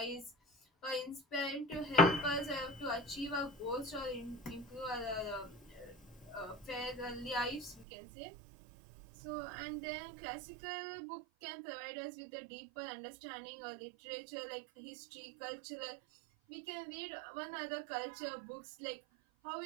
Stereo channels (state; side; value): drops out; left; at 7.9 s